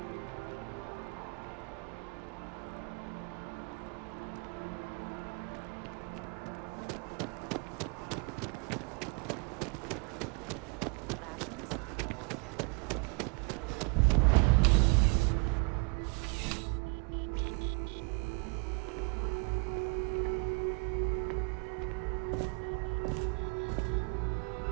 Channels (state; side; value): quieter; left; 32.2 dB